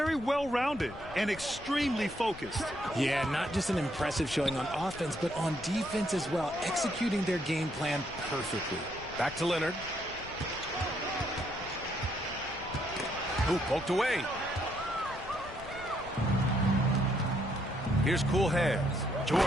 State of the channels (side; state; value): left; noise; rumble, 16 dB below the sound